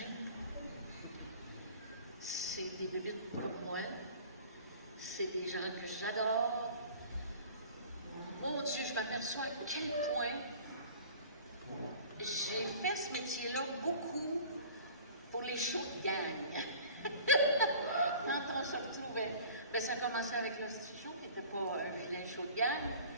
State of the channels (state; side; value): inverted; both; correlation -0.44